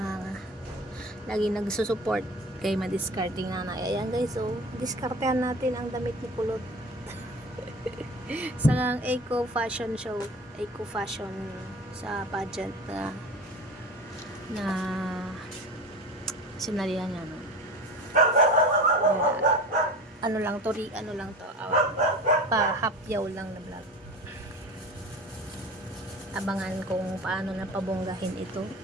lagi nagsusupport kay Madiscarding Nanay. Ayan guys, so diskartehan natin ang damit ni Kulot sa eco fashion show, eco fashion sa pageant na sinalihan niya, no? Ano lang to, pa-hapyaw lang na vlog. Abangan kung paano na pabonggahin itong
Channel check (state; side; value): normal; both; correlation 0.35